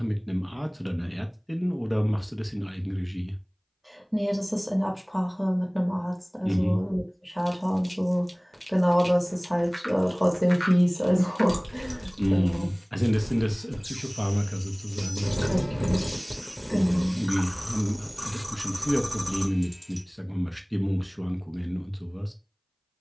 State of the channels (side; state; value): both; identical; correlation 1.00